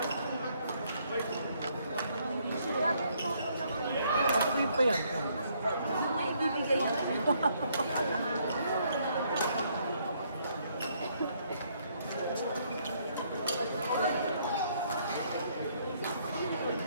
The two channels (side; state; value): both; inverted; correlation -0.69